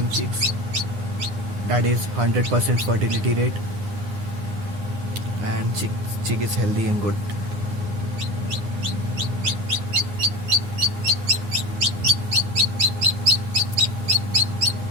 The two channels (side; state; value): left; late; 9.7 ms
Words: chicks. That is 100% fertility rate. And chick is healthy and good.